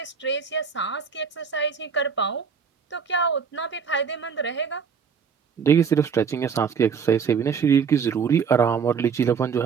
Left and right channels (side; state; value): left; quieter; 6.4 dB